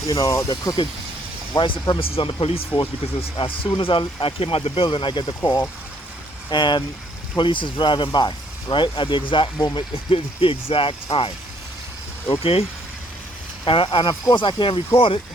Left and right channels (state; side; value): normal; both; correlation 0.66